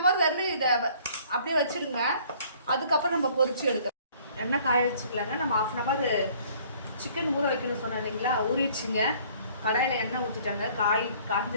hour வரலும் இதை அப்படியே வச்சிருங்க. அதுக்கப்புறம் நம்ம பொரிச்சு எடுக்கலாம். எண்ணெய் காய வச்சுக்கலாங்க. நம்ம 1/2 hour சிக்கன் ஊற வைக்கணும்னு சொன்னோம் இல்லைங்களா, ஊறிடுச்சுங்க. கடாயில் எண்ணெய் ஊற்றிட்டாங்க,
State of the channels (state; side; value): inverted; both; correlation -0.56